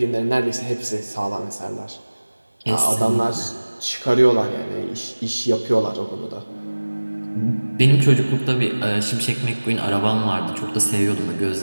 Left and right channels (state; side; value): inverted; both; correlation -1.00